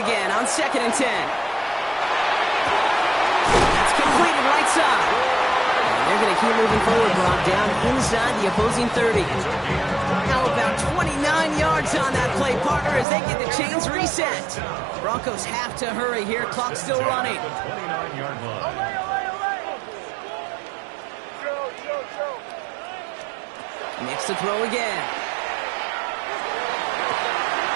on 2nd and 10. That's completed right side. They're going to keep moving forward, Brock, down inside the opposing 30. Now about 29 yards on that play, partner, as they get the chains reset. Broncos have to hurry here. Clock still running. Nix to throw again.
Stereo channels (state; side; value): drops out; left; at 13.1 s